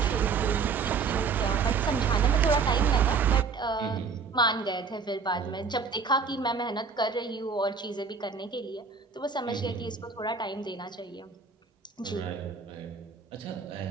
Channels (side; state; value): left; quieter; 5.2 dB